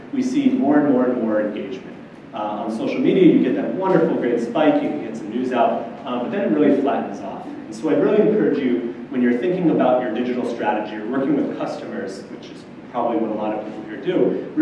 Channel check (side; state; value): both; identical; correlation 1.00